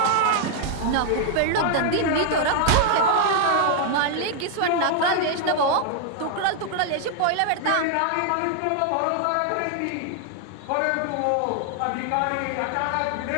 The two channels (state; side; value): different; both; correlation 0.00